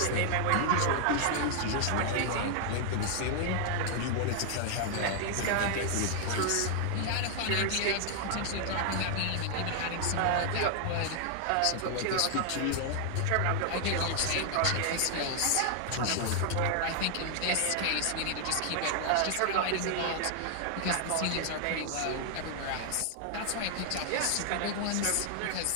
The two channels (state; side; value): different; both; correlation 0.00